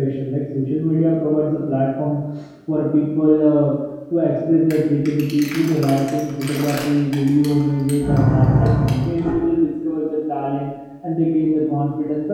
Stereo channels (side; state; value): both; identical; correlation 1.00